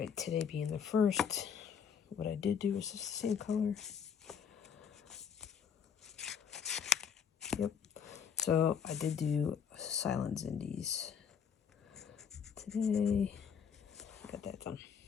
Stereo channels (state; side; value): quieter; right; 7.3 dB